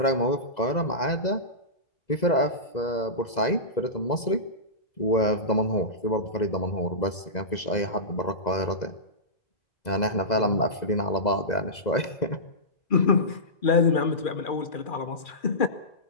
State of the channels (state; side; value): late; right; 2.0 ms